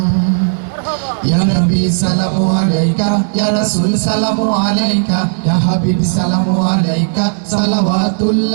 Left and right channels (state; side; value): silent; left; digital silence